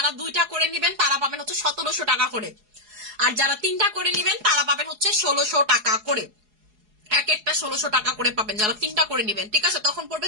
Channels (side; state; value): left; late; 4.8 ms